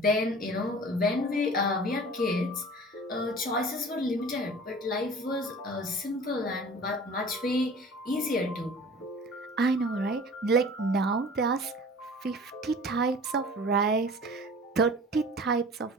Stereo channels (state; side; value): normal; both; correlation 0.43